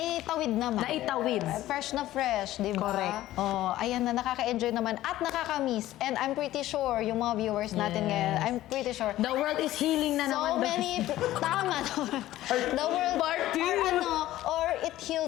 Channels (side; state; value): right; quieter; 14.9 dB